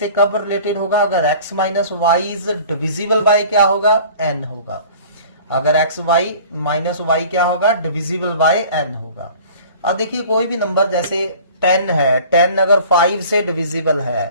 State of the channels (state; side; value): inverted; both; correlation -0.46